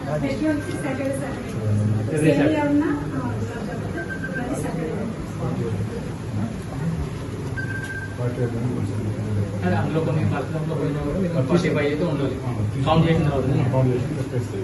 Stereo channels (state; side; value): identical; both; correlation 1.00